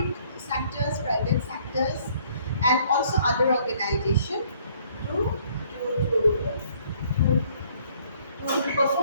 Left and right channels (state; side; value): inverted; both; correlation -0.62